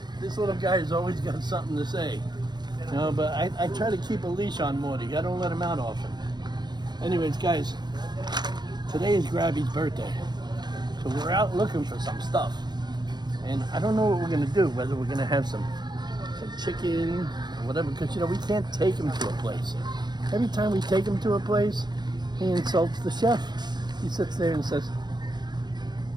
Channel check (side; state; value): left; late; 0.21 ms